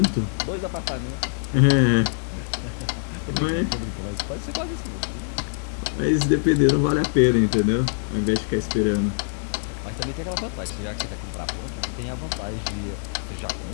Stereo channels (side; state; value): right; silent; 60 dB below the other